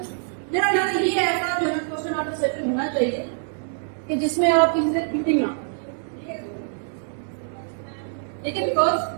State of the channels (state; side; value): silent; left; digital silence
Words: मेरा ख्याल है ये ऐसा जो है क्वेश्चन आपका सेशन होना चाहिए कि जिसमें आप किसी से चीटिंग ना, ठीक है, लेकिन बिकॉज